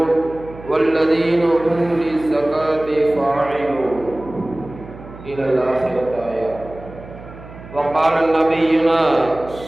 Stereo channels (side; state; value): right; noise; hum, 17 dB below the sound